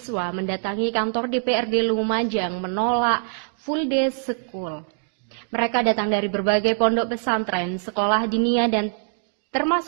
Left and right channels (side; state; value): left; silent; digital silence